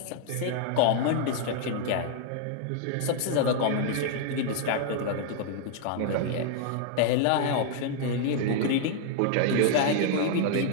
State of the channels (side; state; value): both; different; correlation 0.00